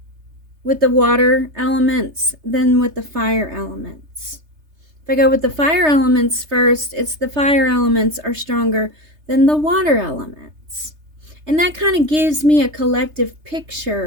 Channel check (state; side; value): late; left; 3.3 ms